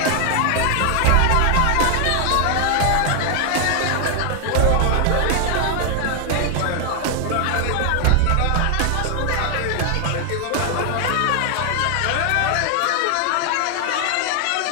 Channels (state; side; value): different; both; correlation 0.00